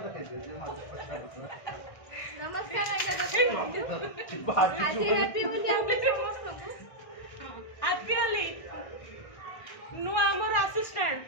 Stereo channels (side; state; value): right; late; 1.6 ms